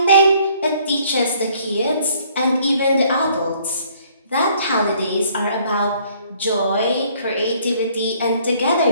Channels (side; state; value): both; inverted; correlation -0.61